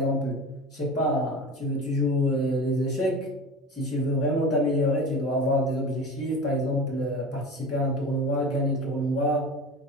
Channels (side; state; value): both; normal; correlation 0.31